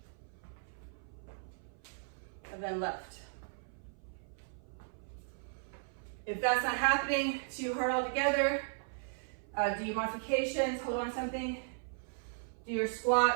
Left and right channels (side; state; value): left; silent; 53 dB below the other